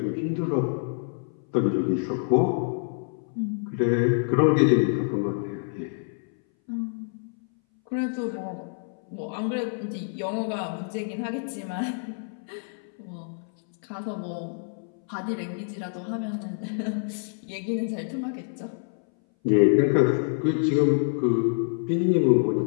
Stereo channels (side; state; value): right; silent; 59 dB below the other